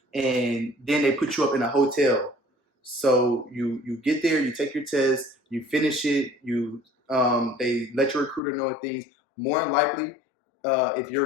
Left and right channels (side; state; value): right; drops out; at 8.4 s